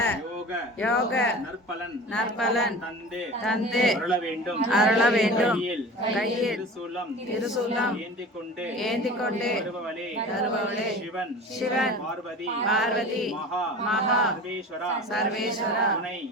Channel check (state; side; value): normal; both; correlation 0.37